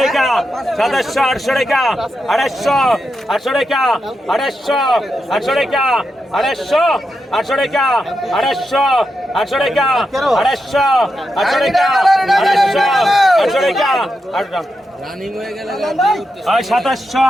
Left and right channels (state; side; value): normal; both; correlation 0.86